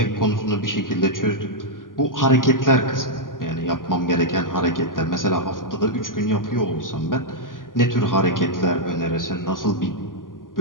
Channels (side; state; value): right; late; 0.90 ms